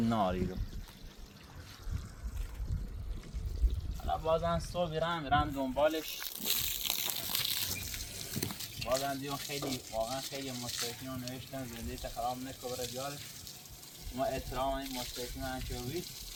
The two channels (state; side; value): identical; both; correlation 1.00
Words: ناری رو. حالا بازم صبح میرم دنبالش. بازم دیون خیلی واقعا خیلی مشترکین رو نوشتن زندگی خراب نکن بره بیارش. ما احترام این مشترکین رو انچوبی